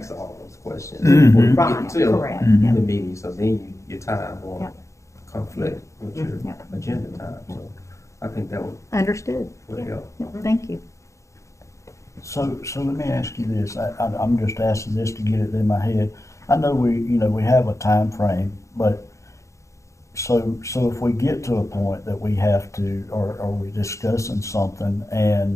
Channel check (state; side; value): late; right; 0.15 ms